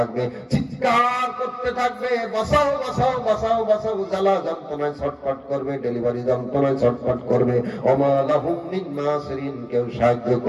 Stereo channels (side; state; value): both; identical; correlation 1.00